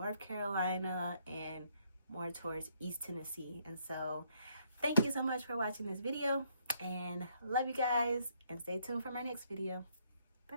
Carolina and more towards East Tennessee. And so thank you so much for watching this video, and love you guys, and stay tuned for my next video. Bye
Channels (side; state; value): both; inverted; correlation -0.70